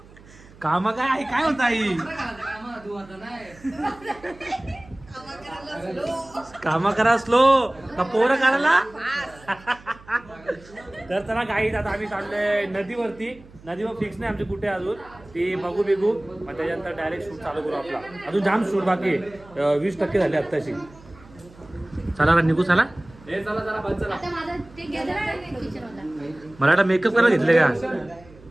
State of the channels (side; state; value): right; noise; hum, 23 dB below the sound